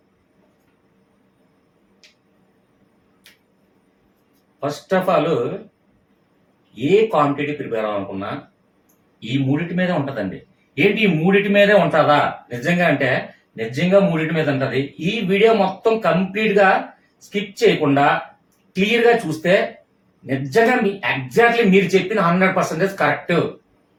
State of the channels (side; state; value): both; identical; correlation 1.00